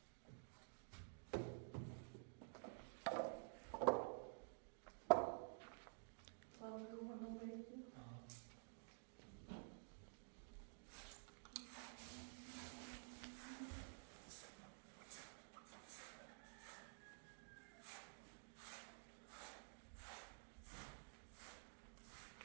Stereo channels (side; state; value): left; silent; digital silence